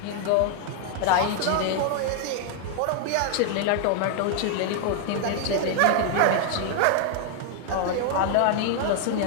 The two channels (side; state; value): both; different; correlation 0.00